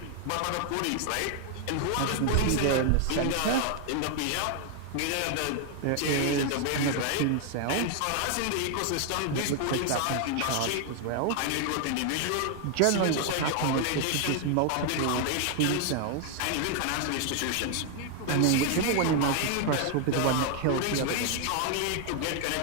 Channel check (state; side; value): different; both; correlation 0.00